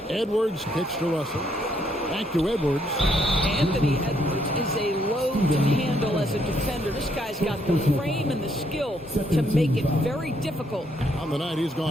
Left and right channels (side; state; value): both; normal; correlation 0.72